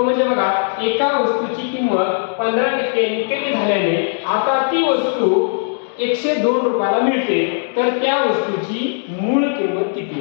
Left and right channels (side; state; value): right; silent; digital silence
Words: म्हणजे बघा, एका वस्तूची किंमत 15% कमी झाल्याने आता ती वस्तू 102 रुपयाला मिळते, तर त्या वस्तूची मूळ किंमत